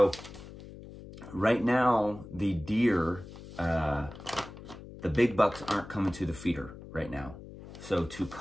right now the deer, the big bucks aren't coming to the feeder right now. So to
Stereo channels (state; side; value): noise; left; hum, 15 dB below the sound